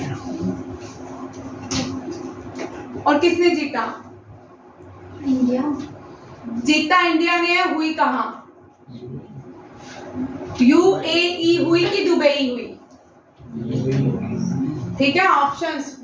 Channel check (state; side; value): identical; both; correlation 1.00